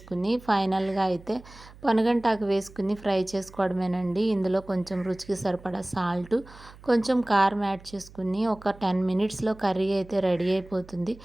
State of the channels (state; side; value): noise; right; hum, 21 dB below the sound